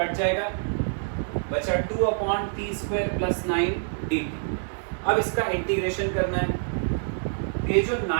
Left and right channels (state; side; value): silent; left; 61 dB below the other